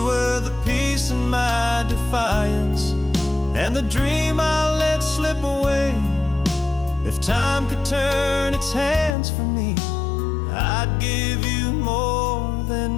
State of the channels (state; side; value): drops out; right; at 9.2 s